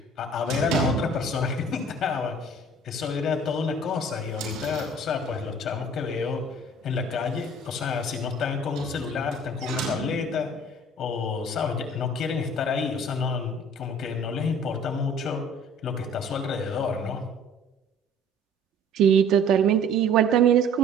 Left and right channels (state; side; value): normal; both; correlation 0.49